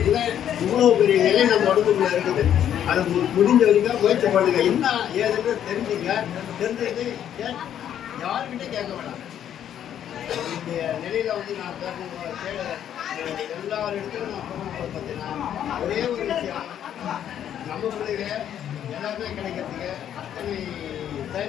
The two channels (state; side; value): quieter; right; 10.1 dB